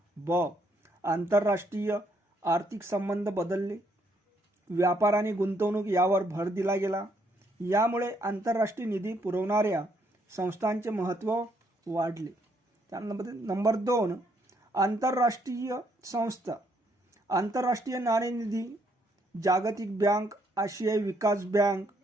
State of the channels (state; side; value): normal; both; correlation 0.71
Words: आंतरराष्ट्रीय आर्थिक संबंध बदलले, व्यापार आणि गुंतवणूक यावर भर दिला गेला। यामुळे आंतरराष्ट्रीय निधी पुरवणाऱ्या संस्थांचे महत्त्व वाढले। त्यानंतर नंबर 2, आंतरराष्ट्रीय संस्था। आंतरराष्ट्रीय नाणेनिधी, जागतिक बँक, आशियाई विकास बँक,